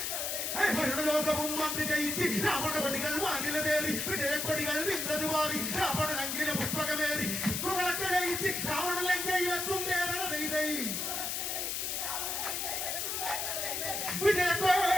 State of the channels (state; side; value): noise; left; hiss, 1 dB below the sound